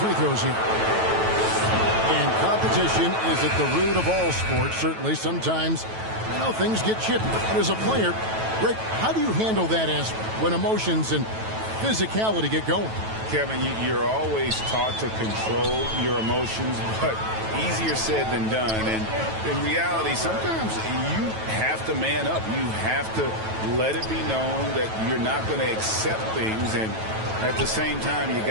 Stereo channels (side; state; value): left; late; 9.2 ms